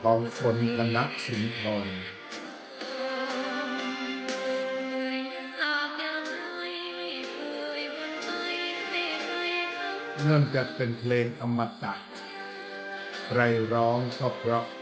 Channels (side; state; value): both; identical; correlation 1.00